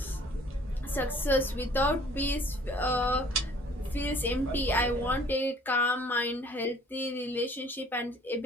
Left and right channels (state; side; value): normal; both; correlation 0.55